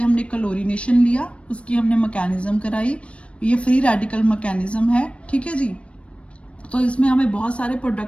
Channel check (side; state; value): right; late; 0.061 ms